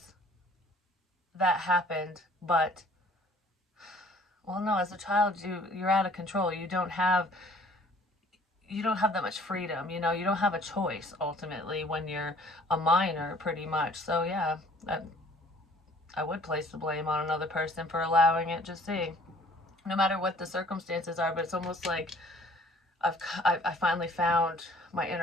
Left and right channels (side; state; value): both; normal; correlation 0.55